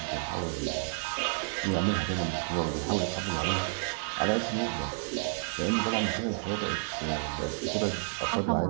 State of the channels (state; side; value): silent; left; digital silence